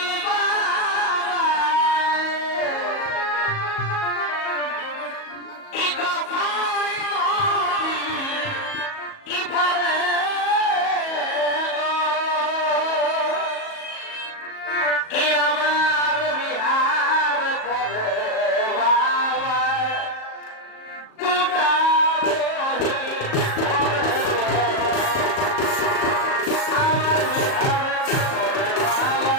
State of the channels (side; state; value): right; late; 37 ms